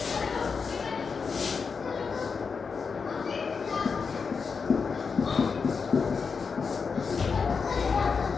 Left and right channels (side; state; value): right; quieter; 5.4 dB